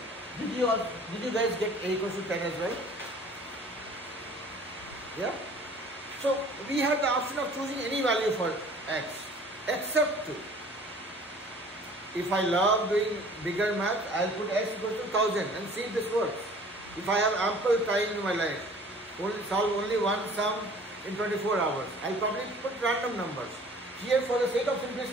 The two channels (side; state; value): both; normal; correlation 0.50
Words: Did you guys get a equals to 10 as well? Yeah? So we have the option of choosing any value for x except 2. If I love doing bigger math, I'll put x equals to 1000 and see if this works. If I have ample time in my life, solve only one sum in 24 hours, I'll probably put random numbers. Here, for the sake of